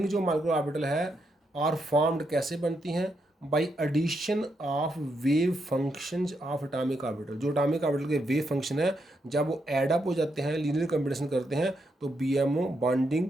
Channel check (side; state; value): both; normal; correlation 0.81